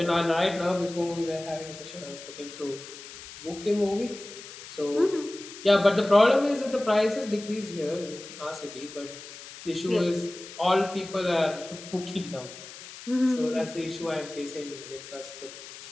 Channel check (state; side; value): noise; left; hiss, 14 dB below the sound